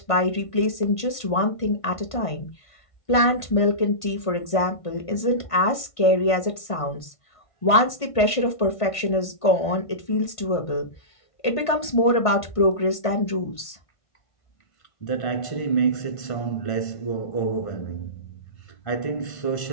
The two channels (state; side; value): late; right; 1.5 ms